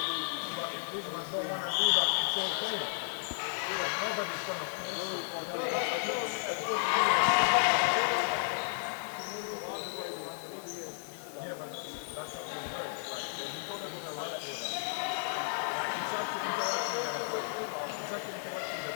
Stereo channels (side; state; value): right; silent; 55 dB below the other